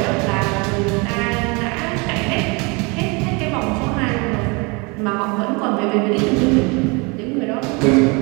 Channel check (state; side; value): quieter; left; 29.0 dB